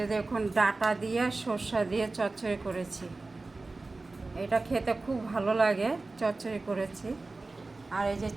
দেখুন, ডাঁটা দিয়ে সর্ষা দিয়ে চচ্চড়ি করেছি। এটা খেতে খুব ভালো লাগে, চচ্চড়ি করেছি। আর এই যে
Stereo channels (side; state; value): left; quieter; 3.4 dB